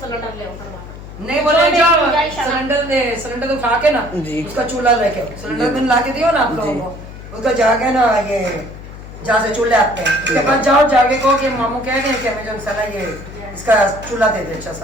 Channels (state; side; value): noise; left; hum, 14 dB below the sound